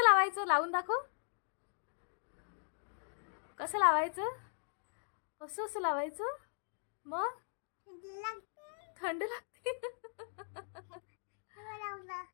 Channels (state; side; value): silent; right; digital silence